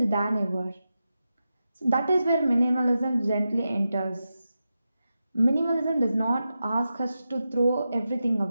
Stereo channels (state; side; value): inverted; both; correlation -0.90